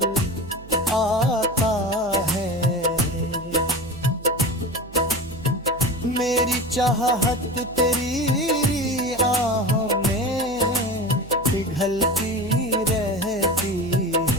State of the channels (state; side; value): noise; right; hum, 18 dB below the sound